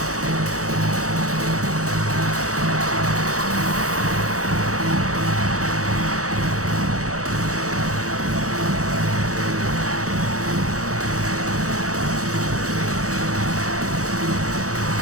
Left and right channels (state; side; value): late; left; 0.65 ms